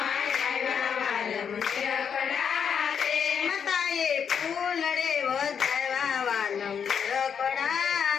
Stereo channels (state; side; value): quieter; right; 7.3 dB